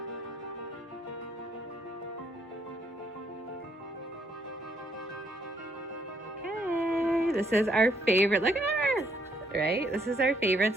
Okay, this is our favorite. Look at her, right? This is our favorite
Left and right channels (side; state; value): both; normal; correlation 0.70